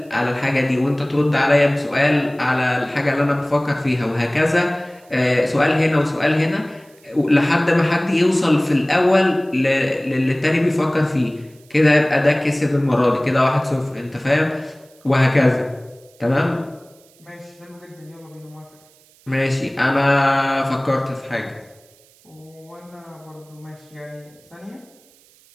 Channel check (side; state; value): right; noise; hiss, 30 dB below the sound